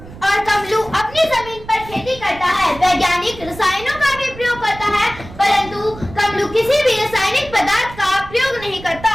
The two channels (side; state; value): right; noise; rumble, 16 dB below the sound